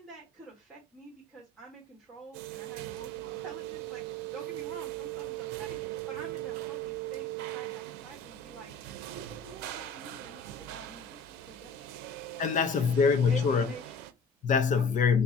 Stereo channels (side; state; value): right; quieter; 3.2 dB